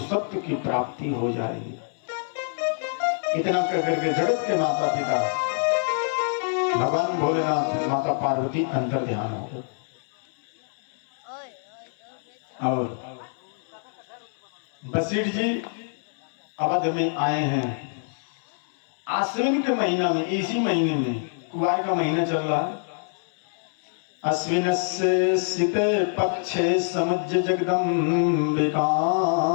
की प्राप्ति हो जाएगी। इतना कहकर के जगत के माता पिता भगवान भोलेनाथ, माता पार्वती अंतर ध्यान हो गए। और वशिष्ठ जी अवध में आए हैं। आश्विन के महीना में, इसी महीने में, कुआर का महीना चल रहा है। अश्विन से शीते पक्षे समुज्य जगदम्बिकाम।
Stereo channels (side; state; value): right; silent; 61 dB below the other